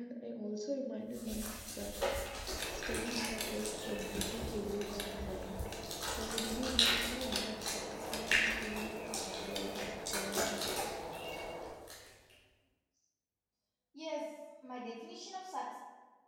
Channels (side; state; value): both; identical; correlation 1.00